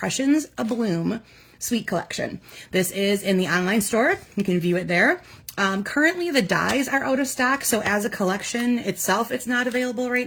A Bloom Suite Collection. This is in the online store. You can view it there. Currently, the dies are out of stock, so as a collection itself, it's not available right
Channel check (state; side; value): identical; both; correlation 1.00